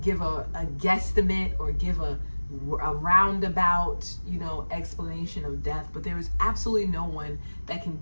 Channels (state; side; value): inverted; both; correlation -1.00